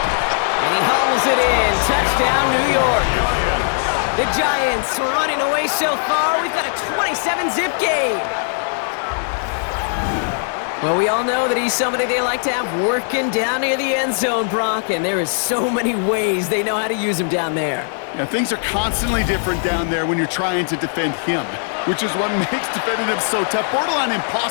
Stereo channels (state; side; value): silent; right; digital silence